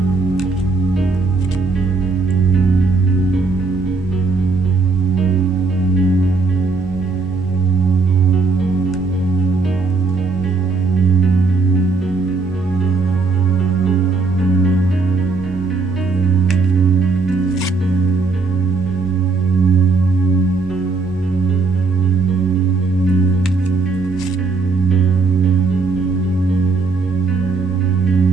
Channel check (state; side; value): quieter; left; 4.0 dB